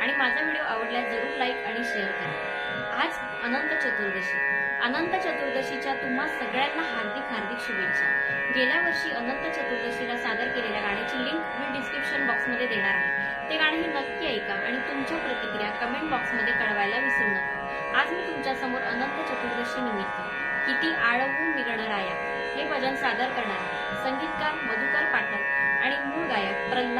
आणि माझा व्हिडिओ आवडल्यास जरूर लाईक आणि शेअर करा। आज अनंत चतुर्दशी। अनंत चतुर्दशीच्या तुम्हा सगळ्यांना हार्दिक हार्दिक शुभेच्छा। गेल्या वर्षी अनंत चतुर्दशीला सादर केलेल्या गाण्याची लिंक मी डिस्क्रिप्शन बॉक्समध्ये देणार आहे। ते गाणंही नक्की ऐका आणि तुमच्या प्रतिक्रिया कमेंट बॉक्समध्ये कळवायला विसरू नका। आज मी तुमच्या समोर अनंत चतुर्दशी निमित्त किती आळवू मी गणराया हे भजन सादर करणार आहे। संगीतकार मधुकर पाठक आणि मूळ गायक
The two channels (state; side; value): identical; both; correlation 1.00